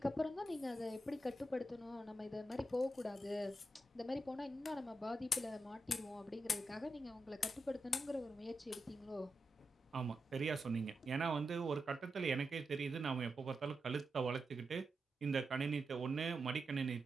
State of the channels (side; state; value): both; normal; correlation 0.87